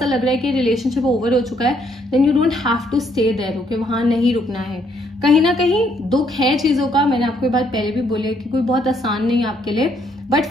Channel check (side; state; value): both; normal; correlation 0.70